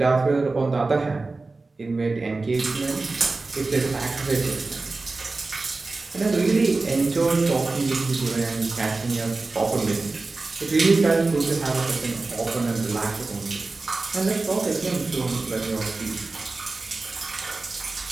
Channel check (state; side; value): quieter; left; 3.6 dB